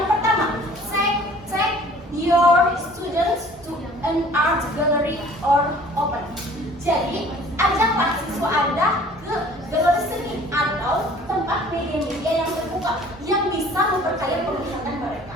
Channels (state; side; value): normal; both; correlation 0.51